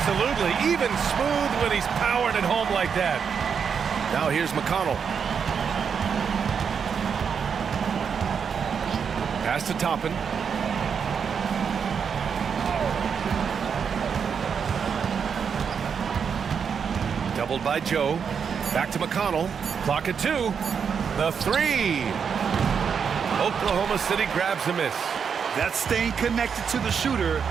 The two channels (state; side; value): quieter; left; 6.7 dB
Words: Even smooth when he's powering it home like that. Now here's McConnell. Pass to Toppin. Doubled by Joe. Back to McConnell. Clock at 2. The 3. Oklahoma City grabs a miss. That's staying connected to the shooter